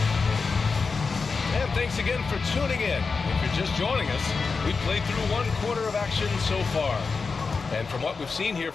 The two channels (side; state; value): right; quieter; 4.7 dB